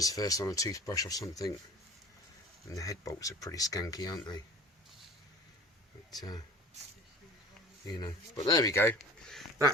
first on a toothbrush or something. And the head bolts are pretty skanky, aren't they? But, you know. But there we go.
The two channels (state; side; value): normal; both; correlation 0.42